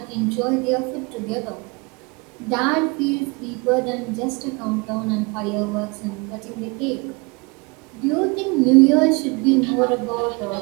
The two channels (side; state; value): left; quieter; 28.8 dB